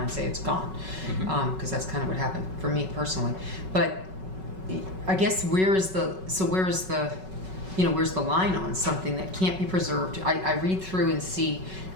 and say it's gone, because that's kind of what happened for me personally. But I guess where's the line on something that can't be preserved? I read through and see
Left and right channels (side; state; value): left; late; 5.3 ms